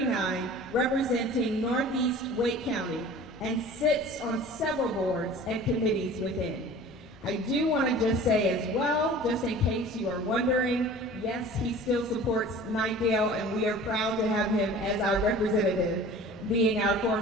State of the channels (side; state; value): both; normal; correlation 0.43